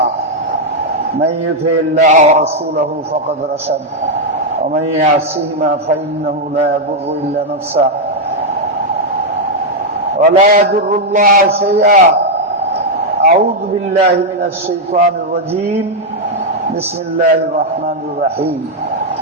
من يطع الله ورسوله فقد رشد، ومن يعصهما فإنه لا يضر إلا نفسه ولا يضر الله شيئا. أعوذ بالله من الشيطان الرجيم. بسم الله الرحمن الرحيم.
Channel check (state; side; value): normal; both; correlation -0.01